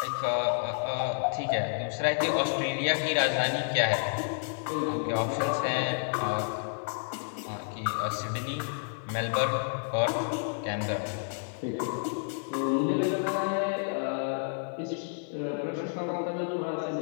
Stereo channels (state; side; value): silent; right; 57 dB below the other